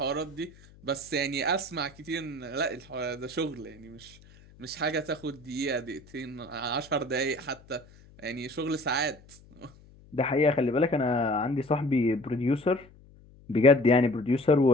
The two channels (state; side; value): noise; left; hum, 24 dB below the sound